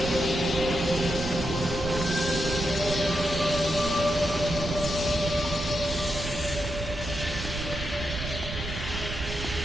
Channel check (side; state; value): right; noise; rumble, 7 dB below the sound